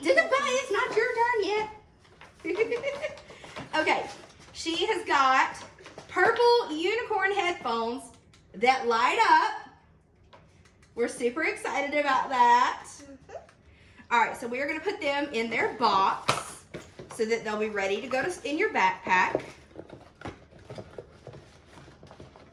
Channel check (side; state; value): both; identical; correlation 1.00